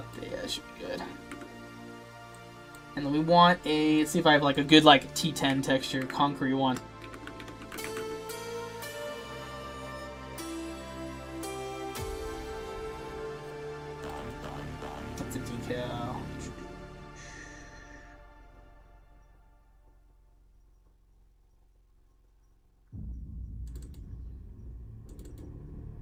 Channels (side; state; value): both; identical; correlation 1.00